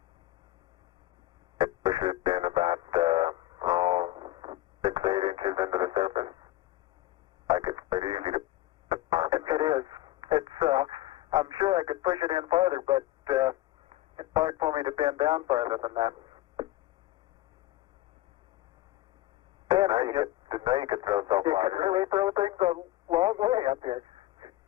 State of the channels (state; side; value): quieter; right; 16.3 dB